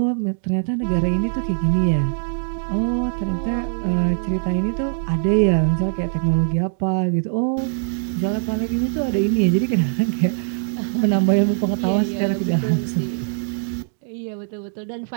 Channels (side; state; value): left; silent; digital silence